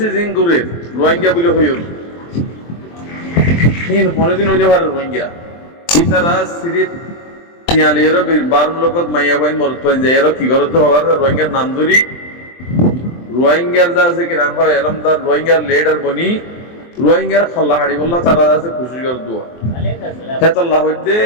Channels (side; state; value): right; late; 23 ms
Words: জিন দূরে রোহিঙ্গা বলে হইল হিন কোনদিন হইলে পারে রোহিঙ্গা ইতারা সিরিপ তিয়ালেরও 12 লোকত মাইয়া বাইন মরত পাই যায় এর কি গরত হওয়ার রোহিঙ্গার নাম ধরি রোহিঙ্গার দাসে কি নাম হয় এলমদার রোহিঙ্গার লিডার বনি রোহিঙ্গার খল্লা হাড়ি বললা তারা দাসে খুশি কর দুয়া হেতাল্লাহ হইতে